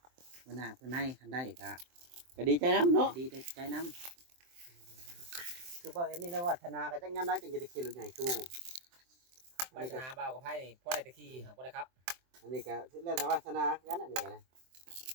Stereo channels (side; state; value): left; late; 23 ms